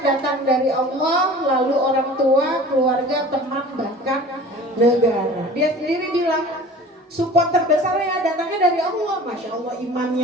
datang dari Allah, lalu orang tua, keluarga, teman, bahkan negara. Dia sendiri bilang support terbesar ya datangnya dari Allah. Masya Allah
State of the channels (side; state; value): both; normal; correlation 0.42